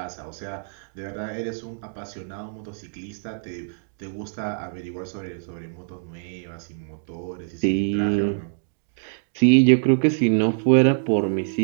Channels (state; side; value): silent; left; digital silence